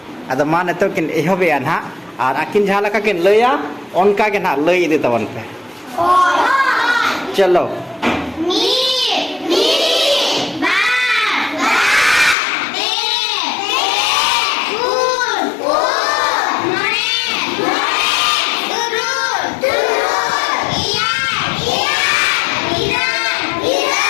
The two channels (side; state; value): right; drops out; at 12.4 s